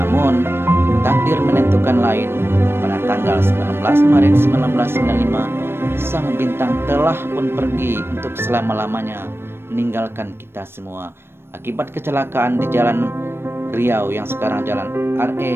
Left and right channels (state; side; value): late; left; 0.12 ms